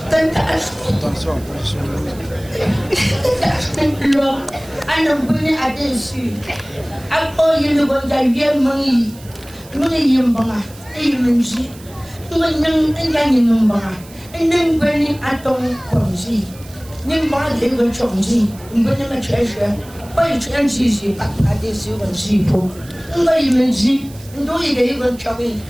attention, ana buni adesu ako yinu gonja yemangi muni yembanga eyimenji nganyang enyanyi numbanga enen bani atong konji nimba de go chonji mbani ma chesha bai chanji ji adesu gonji po ngai menji ndo yige go chobi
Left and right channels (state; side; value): noise; right; hiss, 21 dB below the sound